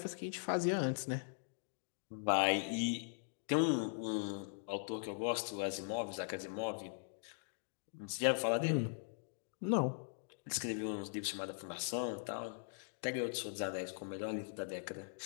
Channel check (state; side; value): silent; right; digital silence